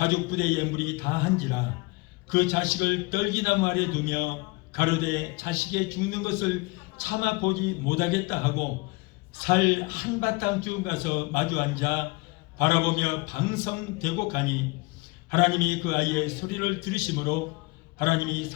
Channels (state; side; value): quieter; right; 25.8 dB